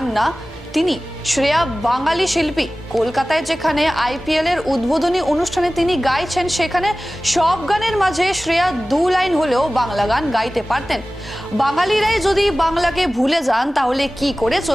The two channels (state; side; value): normal; both; correlation 0.97